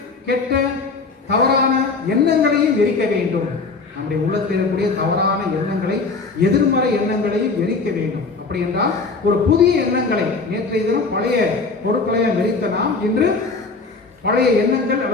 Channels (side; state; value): right; quieter; 4.2 dB